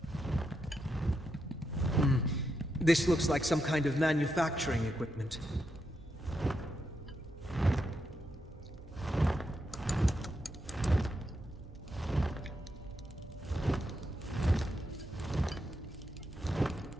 This looks like some kind of manufacturing equipment.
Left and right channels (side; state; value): both; normal; correlation 0.83